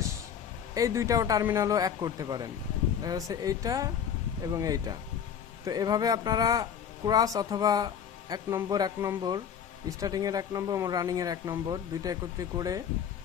এই 2টাও টার্মিনালও এক করতে পারেন, দেখা যাচ্ছে এইটা এবং এইটা। তো এভাবে আপনারা ক্রস অথবা 1 নম্বর স্টার্টিংয়ের 1 নম্বর এবং রানিংয়ের 1 নম্বর 2টা একত্রে করে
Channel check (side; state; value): right; quieter; 8.2 dB